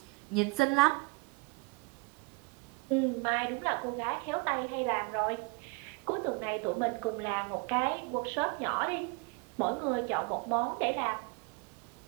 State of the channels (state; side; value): quieter; left; 29.1 dB